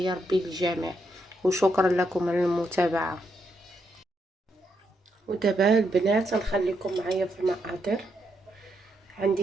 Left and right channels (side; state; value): both; normal; correlation 0.79